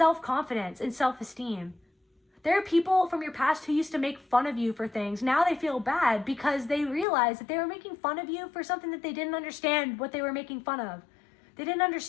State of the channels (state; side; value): drops out; right; at 7.1 s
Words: and self-esteem. There are people from your past who used to make fun of you for things. Now they feel bad because they realize that they were making fun of you for something that they didn't understand what they were making fun of. They didn't